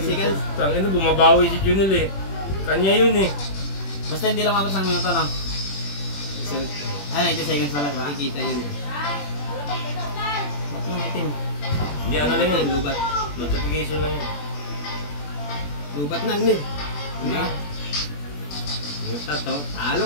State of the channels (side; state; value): right; late; 21 ms